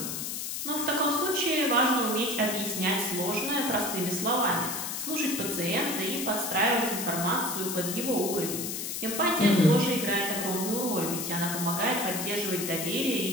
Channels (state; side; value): noise; left; hiss, 4 dB below the sound